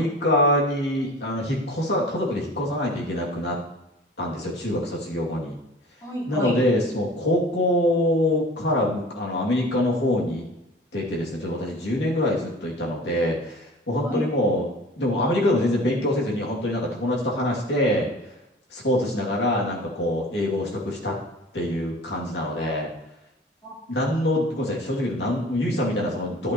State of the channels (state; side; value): normal; both; correlation 0.42